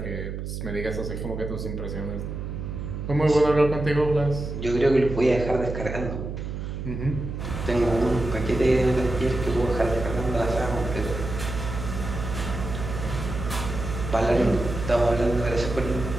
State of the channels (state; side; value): noise; right; hum, 6 dB below the sound